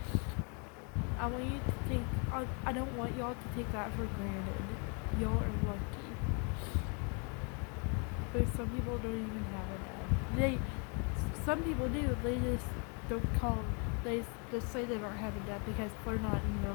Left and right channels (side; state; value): right; quieter; 36.0 dB